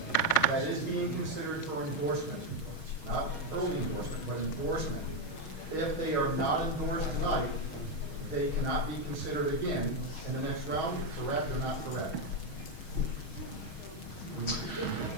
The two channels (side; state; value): right; late; 6.3 ms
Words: that is being considered for endorsement, not early endorsement, but endorsement, if they are not endorsed tonight, they cannot be considered again in the next round, correct or not correct?